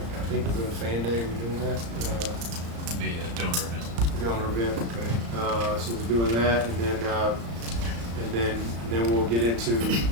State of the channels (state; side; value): late; left; 35 ms